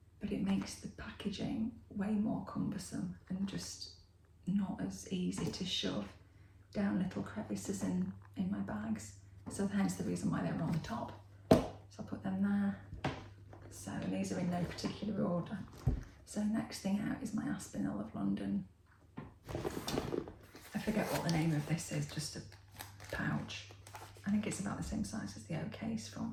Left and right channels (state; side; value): identical; both; correlation 1.00